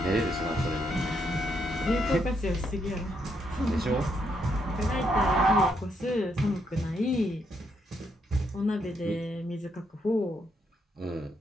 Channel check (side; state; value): both; normal; correlation 0.76